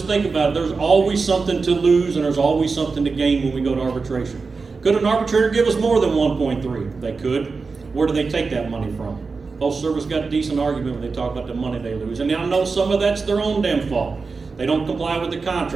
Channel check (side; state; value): left; quieter; 4.5 dB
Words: think about it. There's always something to lose and there's always something to gain when we go to arbitration. Could an arbitrator give us more than 1.3? They could. Where do they take that money from? Postal Service got a decent argument when they talk about the money they lose. And I know some of that's their own damn fault. They don't comply with the